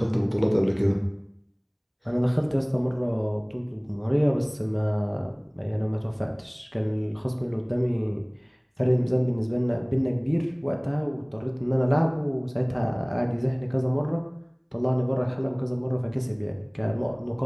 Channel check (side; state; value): both; identical; correlation 1.00